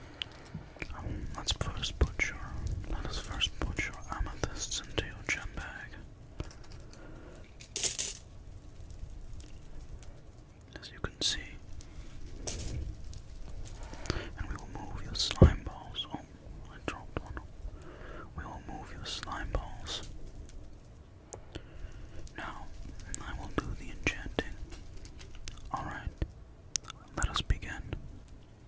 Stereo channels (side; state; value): both; identical; correlation 1.00